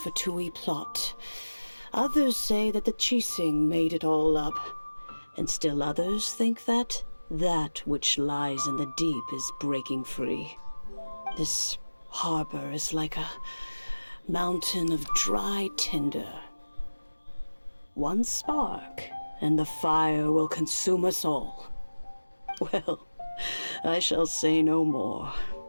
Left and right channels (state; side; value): inverted; both; correlation -1.00